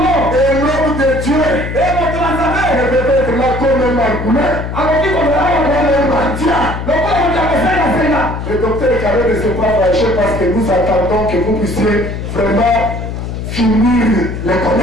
Et l'homme de Dieu ne peut être là comme un margoulin, comme un mendiant. Le docteur Carré ne s'est pas fâché parce que nous attendons que vous puissiez vraiment finir les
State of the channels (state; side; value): noise; left; hum, 6 dB below the sound